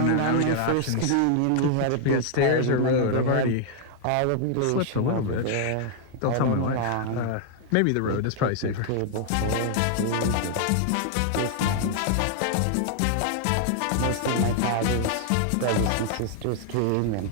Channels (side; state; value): both; different; correlation 0.00